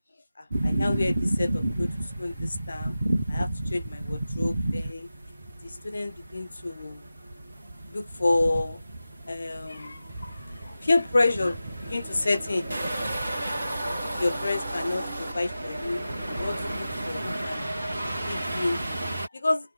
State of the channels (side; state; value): both; inverted; correlation -0.94